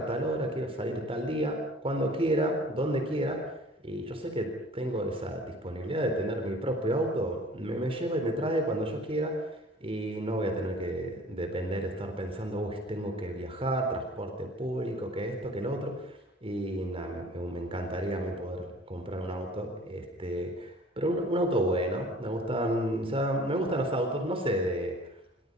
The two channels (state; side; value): normal; both; correlation 0.49